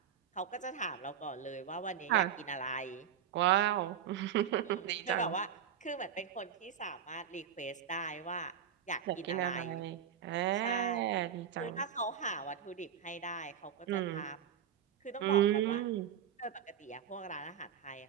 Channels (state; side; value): quieter; left; 8.6 dB